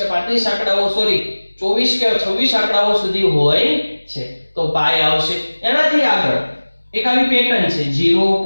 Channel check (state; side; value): inverted; both; correlation -1.00